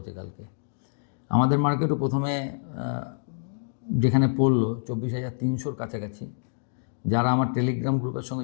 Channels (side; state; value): right; silent; digital silence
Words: কালকে। আমাদের মার্কেটও প্রথমে যেখানে পড়লো 24,300-র কাছাকাছি। যারা আমার টেলিগ্রাম গ্রুপের